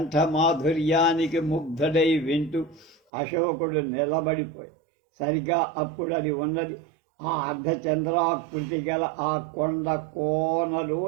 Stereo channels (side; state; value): left; drops out; at 3.0 s